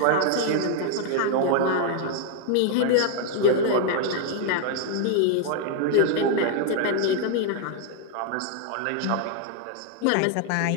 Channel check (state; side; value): different; both; correlation 0.00